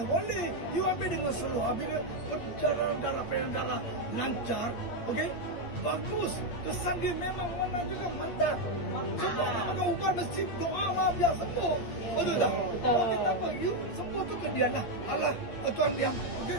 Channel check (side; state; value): right; late; 8.7 ms